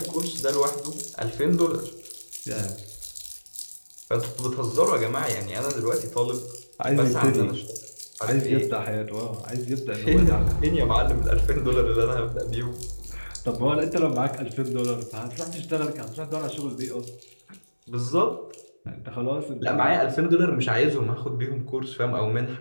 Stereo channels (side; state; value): both; inverted; correlation -1.00